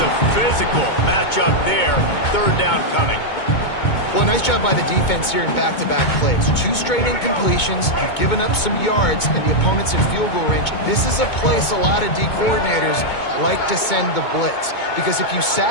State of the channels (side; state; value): right; late; 2.2 ms